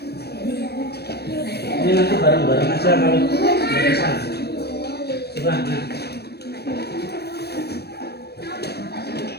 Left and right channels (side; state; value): right; late; 0.47 ms